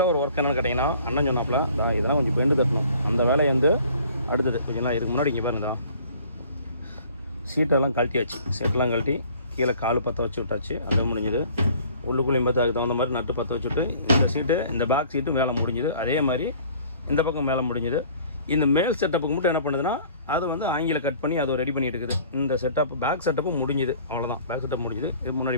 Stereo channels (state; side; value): inverted; both; correlation -0.52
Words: ஒரு ஒர்க் என்னென்னு கேட்டிங்கன்னா, அண்ணன் சொன்னாப்புல இதெல்லாம் கொஞ்சம் பெண்டு கட்டணும். அந்த வேலையை வந்து அடுத்தது கொஞ்சம் இதுக்கு முன்னாடி இங்கே பாருங்க, சீட்டெல்லாம் கழட்டியாச்சு. சீட்டெல்லாம் கழட்டி கீழே கால் பற்ற வச்சு விட்டாச்சு. அது முடிஞ்சுது. உள்ளுக்குள்ளேயும் பார்த்து அதுக்கு தகுந்த மாதிரி நட்டு பற்ற வச்சுட்டு இந்த சீட்டு, இந்த பேக் சீட்டு மேலே முடிஞ்சுது. அதே மாதிரி இந்த பக்கம் மேலே முடிஞ்சுது. இந்த மேல் செட்டப்புக்கு மட்டும் என்ன பண்ணுதுன்னா, அதை வந்து ஆங்கில கட் பண்ணி அதை ரெடி பண்ணிட்டு இருக்குது. இந்த செட்டப் பேக் செட்டப்பு முடிஞ்சுது. அவ்வளோதான், பேக் செட்டப் முடிஞ்சுது. இது முன்னாடி